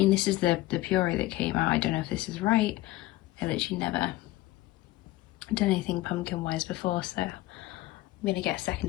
this is the puree that came out. I don't know if this is right. I literally never done anything pumpkin-wise before, so I'm gonna get a second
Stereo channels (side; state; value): right; quieter; 17.0 dB